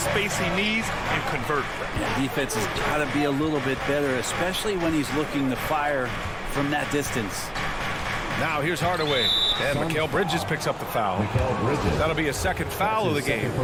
he needs and convert. Yeah, defense has got to be a little bit better, especially when he's looking to fire from that distance. Now here's Hardaway. And Mikal Bridges picks up the foul. That'll be a second foul of the game.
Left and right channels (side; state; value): both; identical; correlation 1.00